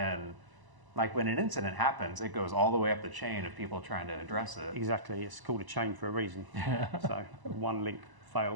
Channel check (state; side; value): late; left; 1.0 ms